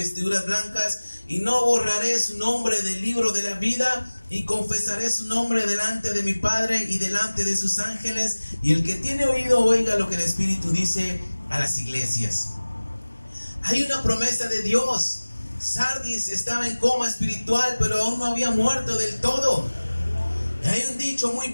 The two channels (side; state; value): both; inverted; correlation -1.00